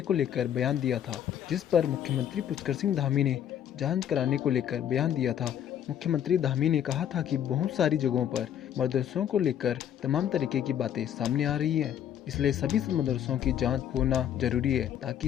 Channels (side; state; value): right; quieter; 9.9 dB